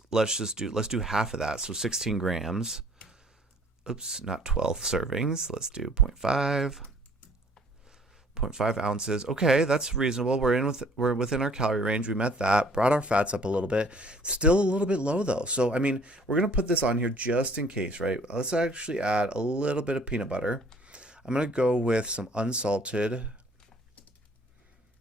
let's do half of that. So 16 grams. Oops, not 12 servings. Let's do 0.5. 0.5 ounces. Okay, that's reasonable. We're within our calorie range. We met that. Brought our fats up a little bit. Still a little bit low though. So I mean, we're gonna put this on here just in case, right? Let's actually add a little bit of peanut butter. I'm gonna go with some unsalted. It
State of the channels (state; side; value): normal; both; correlation 0.57